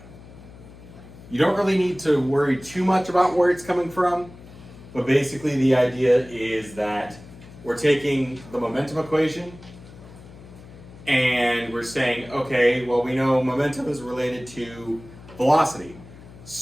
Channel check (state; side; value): noise; left; hum, 19 dB below the sound